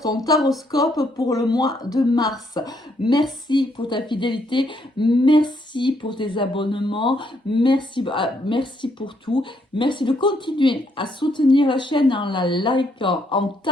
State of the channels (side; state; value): both; normal; correlation 0.73